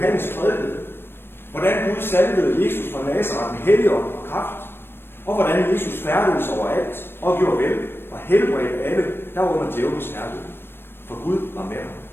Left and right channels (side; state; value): right; late; 0.11 ms